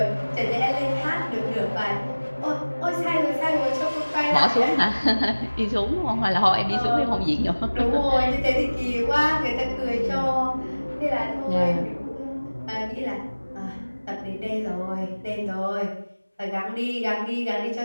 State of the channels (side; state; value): both; inverted; correlation -1.00